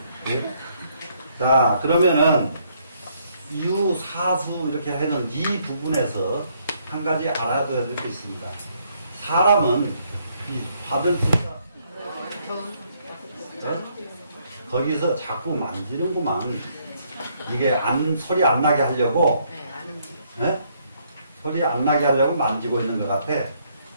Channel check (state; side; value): inverted; both; correlation -0.70